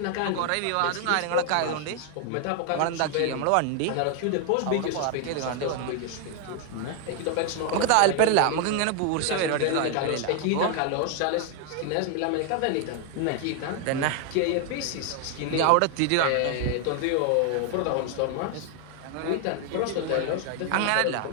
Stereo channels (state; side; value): different; both; correlation 0.00